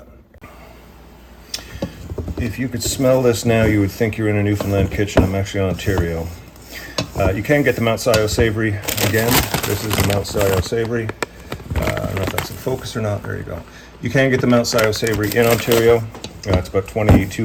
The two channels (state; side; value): identical; both; correlation 1.00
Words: If you could smell this now, you would think you're in a Newfoundland kitchen. I'm actually in Ontario. You can get the Mount.Scio Savoury again. This is the Mount.Scio Savoury. I don't know if that's in focus or not. There you go. You can get the Mount.Scio Savoury in Ontario. It's about